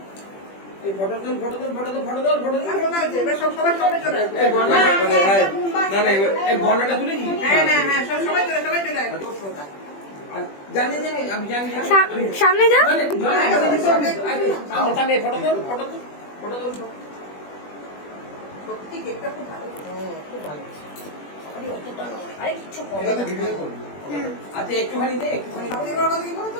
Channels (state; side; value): late; right; 20 ms